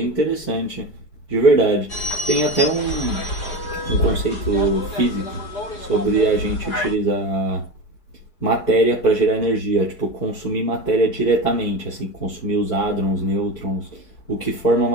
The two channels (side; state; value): right; late; 4.8 ms